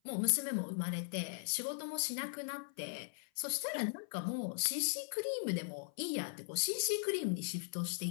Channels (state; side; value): silent; right; 52 dB below the other